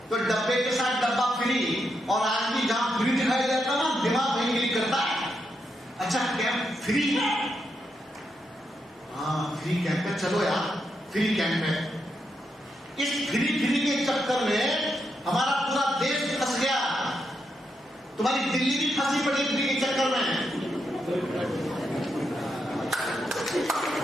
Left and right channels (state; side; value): normal; both; correlation 0.82